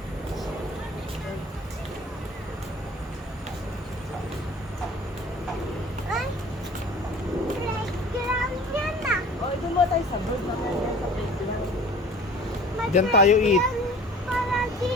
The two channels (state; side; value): normal; both; correlation 0.45